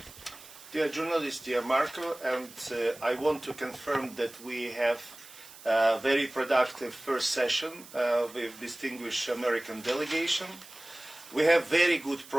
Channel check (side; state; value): right; noise; hiss, 19 dB below the sound